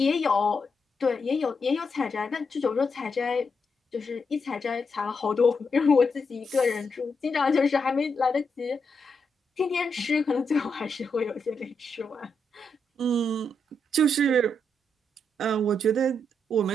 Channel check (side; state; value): both; normal; correlation 0.82